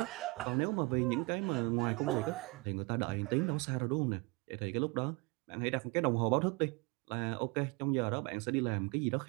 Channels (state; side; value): quieter; left; 26.8 dB